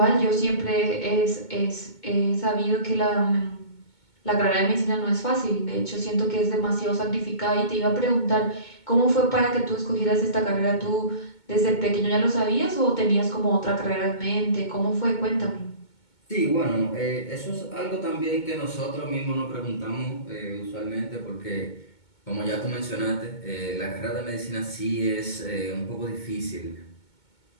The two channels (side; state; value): right; late; 2.2 ms